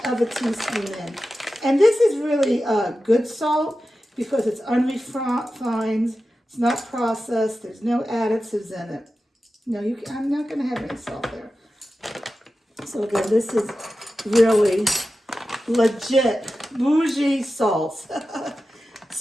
of a teaspoon in. And this is really good salt because it's unrefined. It's not processed. There's no additives in it. No, I'm not going to have any salt there. So again, this is really legit bougie salt.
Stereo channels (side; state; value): both; normal; correlation 0.93